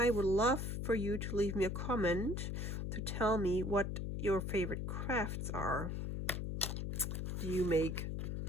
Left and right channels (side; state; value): left; noise; hum, 2 dB below the sound